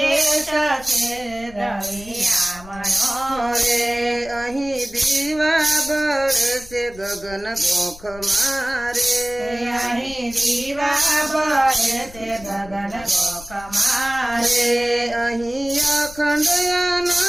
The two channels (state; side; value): noise; left; rumble, 19 dB below the sound